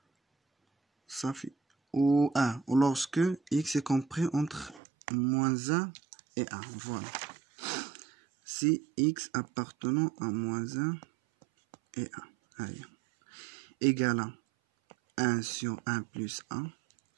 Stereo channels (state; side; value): drops out; left; at 4.8 s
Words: صافي ou 1 ou lorsque x est compris entre moins 1 et 1. Voilà. si x appartenant à moins 1 et 1 égale à 1 sur 1 plus 1